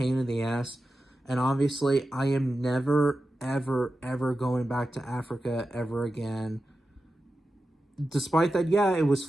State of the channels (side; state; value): both; normal; correlation 0.92